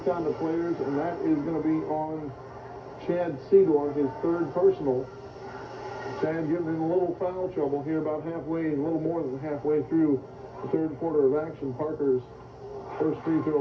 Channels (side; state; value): both; identical; correlation 1.00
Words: players, and that is going to be on Chad Cedar, his third personal. Chad getting in a little foul trouble here about halfway, a little more than halfway through the third quarter of action. Parker's first free